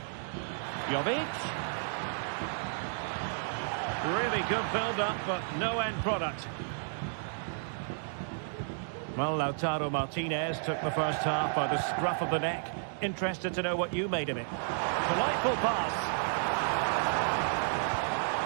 Jovic. Really good build-up, but no end product. Well, Lautaro Martinez took the first half by the scruff of the neck. Interested to know what you made of it. Delightful pass.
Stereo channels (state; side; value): silent; left; digital silence